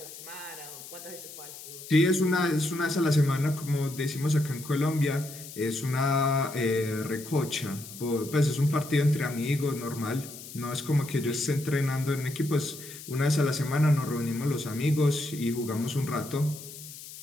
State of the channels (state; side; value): noise; left; hiss, 14 dB below the sound